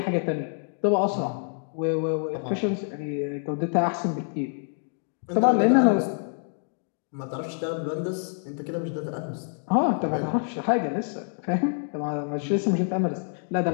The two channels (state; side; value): silent; right; 60 dB below the other